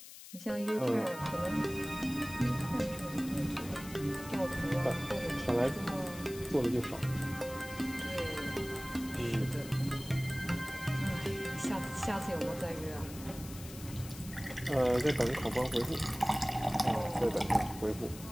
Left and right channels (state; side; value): noise; left; hiss, 15 dB below the sound